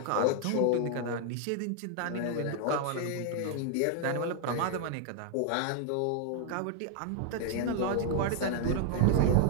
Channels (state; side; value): different; both; correlation 0.00